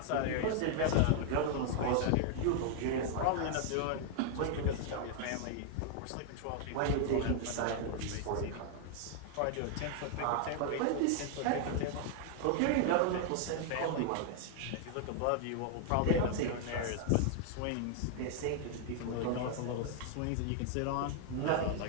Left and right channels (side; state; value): both; different; correlation 0.00